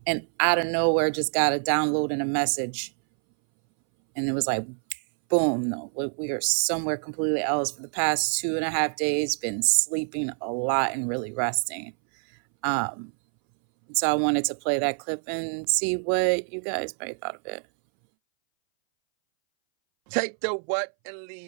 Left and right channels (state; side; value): silent; left; 61 dB below the other